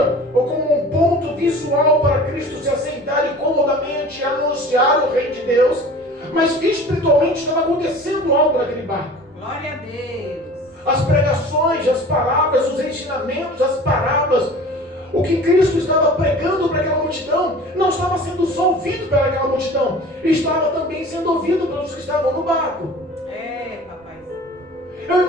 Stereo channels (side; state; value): both; normal; correlation 0.42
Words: ou como um ponto visual para Cristo se assentar e comodamente anunciar o reino de Deus, mas espiritualmente estava acontecendo algo naquele barco. Glória a Deus. As pregações, as palavras, os ensinamentos, as parábolas, o que Cristo estava pregando para aquela multidão não estava sendo só ouvido pelaquela multidão, estava também sendo ouvido pelos que estavam no barco. Papai. Eu